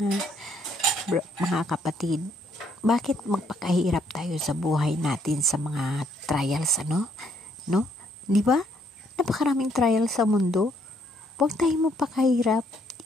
mga kapatid, bakit magpakahirap tayo sa buhay natin sa mga trials, no? Di ba? Napakaraming trials sa mundo. Huwag tayong magpakahirap.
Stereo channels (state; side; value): normal; both; correlation 0.69